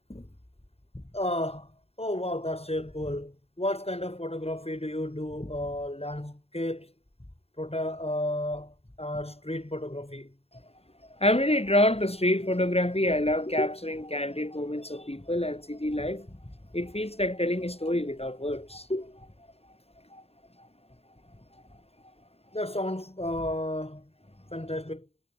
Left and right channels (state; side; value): late; right; 0.29 ms